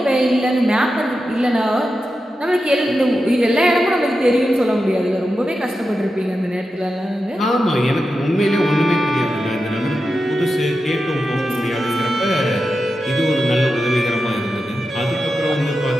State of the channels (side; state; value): both; normal; correlation 0.90